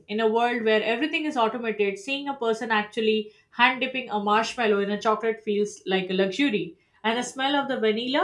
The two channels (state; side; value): identical; both; correlation 1.00